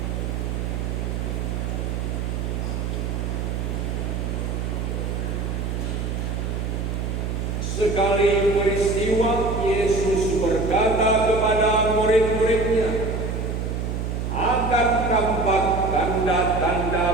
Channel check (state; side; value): noise; right; hum, 2 dB below the sound